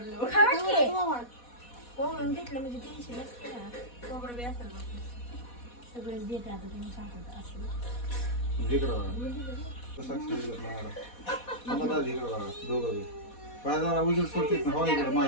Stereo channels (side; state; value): right; late; 4.1 ms